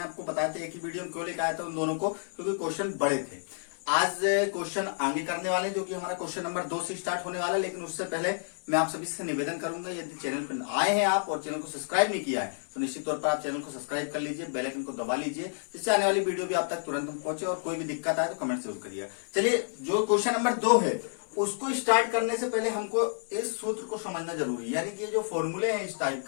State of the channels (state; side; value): silent; right; 58 dB below the other